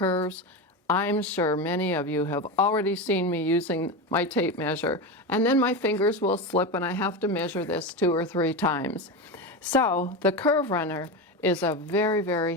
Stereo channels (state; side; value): normal; both; correlation 0.19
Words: I'm sure many of you have already seen me using my tape measure, and then my fingers will slip and I have to measure this 2 or 3 times. So the Curve Runner is a very, very